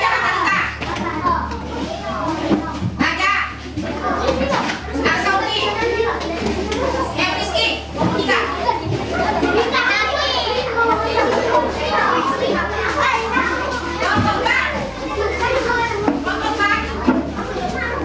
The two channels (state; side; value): identical; both; correlation 1.00